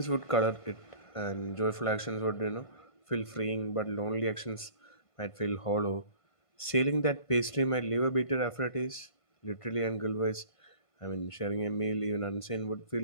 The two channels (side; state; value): right; late; 1.5 ms